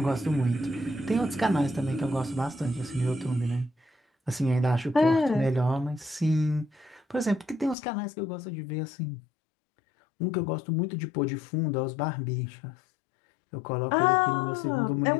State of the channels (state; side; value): drops out; right; at 7.8 s